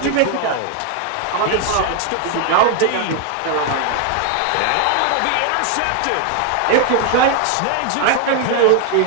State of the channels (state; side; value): different; both; correlation 0.01